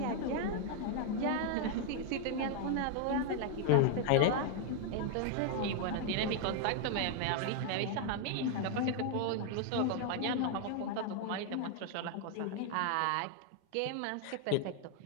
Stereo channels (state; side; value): different; both; correlation 0.00